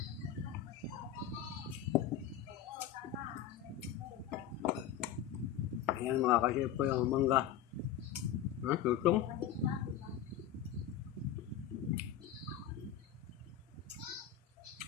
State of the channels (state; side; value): quieter; right; 10.3 dB